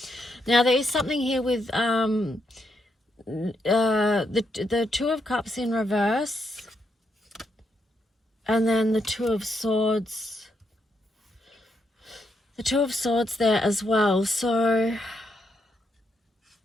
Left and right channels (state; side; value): normal; both; correlation 0.79